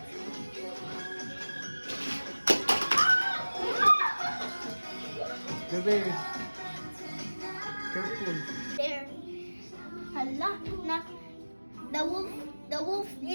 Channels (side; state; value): both; inverted; correlation -1.00